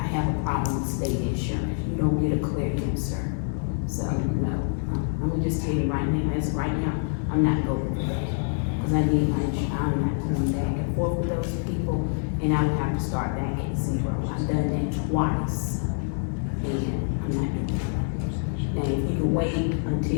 have a problem with state insurance. You don't get a clear answer. So, no, I'm gonna just tell you right now, as of right now, I'm not going for that. Cause I need my insurance, I'm not going back and forth with those people, and I would have to start back at zero. I've done that twice, and I'm not doing that.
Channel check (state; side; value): silent; right; 61 dB below the other